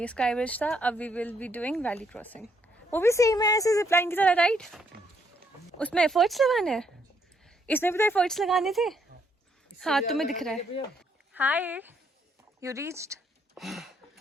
स्काई ब्रिज था. अब we will be doing valley crossing. वो भी सेम है ऐसे जिप लाइन की तरह, राइट? उसमें एफर्ट्स लगाने हैं. इसमें भी तो एफर्ट्स लगाने थे. हाँ, तुम्हें दिख रहा है. हाय, यू रीच्ड.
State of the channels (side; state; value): both; normal; correlation 0.72